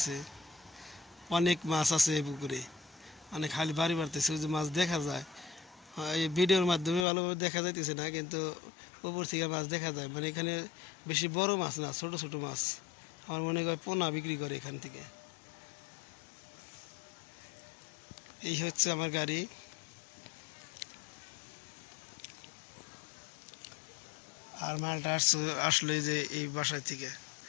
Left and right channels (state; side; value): drops out; right; at 7.1 s